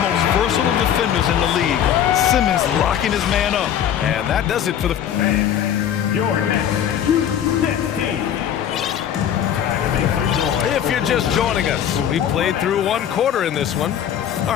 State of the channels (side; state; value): right; quieter; 9.7 dB